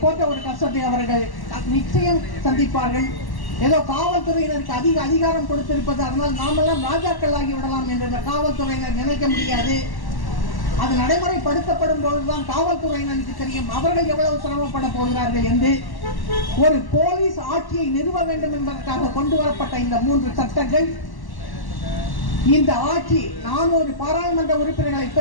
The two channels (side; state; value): right; late; 1.1 ms